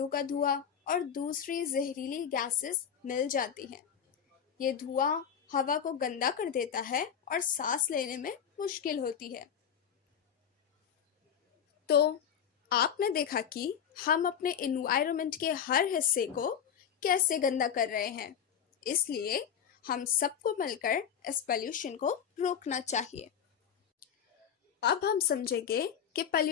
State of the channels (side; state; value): right; quieter; 8.3 dB